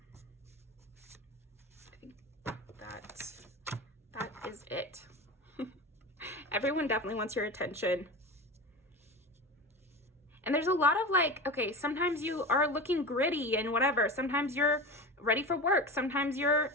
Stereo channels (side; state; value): both; normal; correlation 0.27